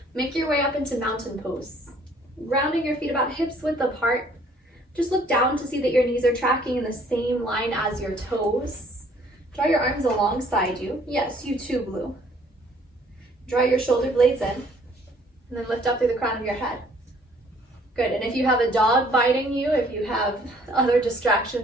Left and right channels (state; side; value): normal; both; correlation 0.60